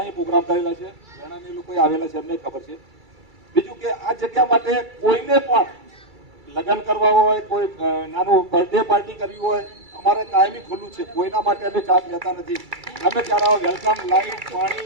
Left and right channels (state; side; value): late; left; 2.3 ms